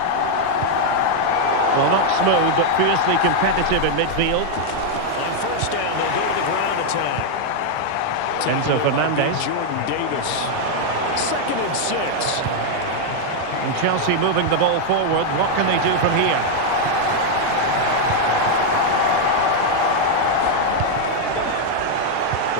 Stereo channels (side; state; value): both; different; correlation 0.00